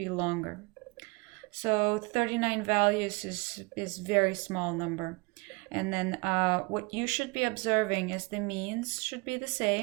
longer. So 39 values is very small number. And then what you should be observing is the means should be the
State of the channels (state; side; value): quieter; left; 27.6 dB